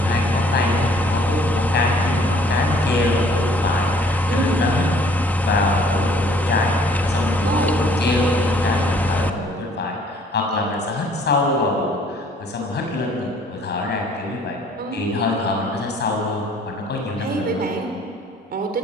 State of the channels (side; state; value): both; normal; correlation 0.58